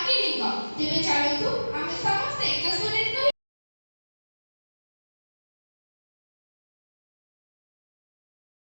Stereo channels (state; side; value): inverted; both; correlation -1.00